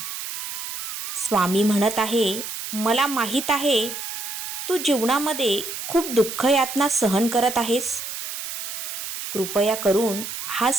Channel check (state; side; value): noise; right; hiss, 6 dB below the sound